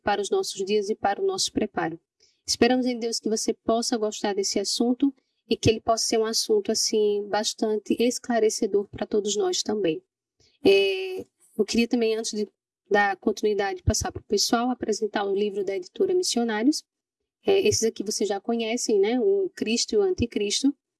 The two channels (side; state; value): both; identical; correlation 1.00